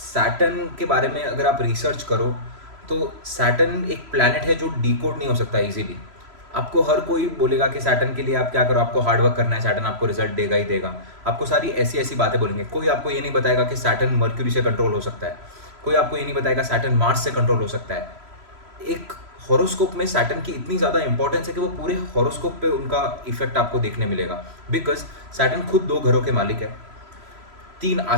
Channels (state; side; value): late; left; 3.0 ms